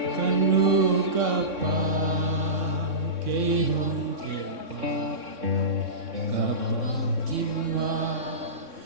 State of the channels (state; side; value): late; left; 3.6 ms